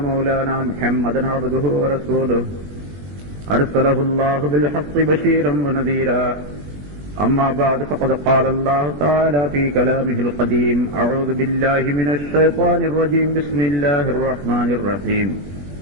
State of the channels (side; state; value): left; late; 21 ms